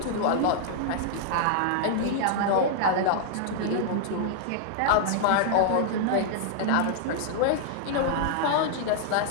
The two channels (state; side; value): different; both; correlation -0.01